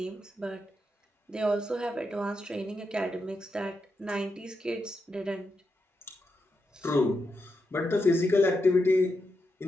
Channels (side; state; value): both; normal; correlation 0.85